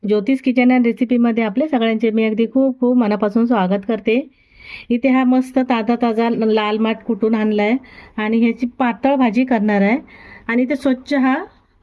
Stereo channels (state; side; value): identical; both; correlation 1.00